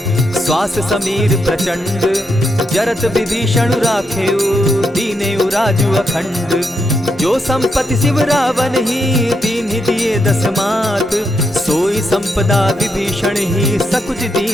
श्वास समीर प्रचंड। जरत विभीषण राखेउ, दीनेउ राजु अखंड। जो संपत्ति शिव रावण ही, दीन्हि दिए दस मात। सोई संपदा विभीषण ही, सकुच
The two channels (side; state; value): both; normal; correlation 0.81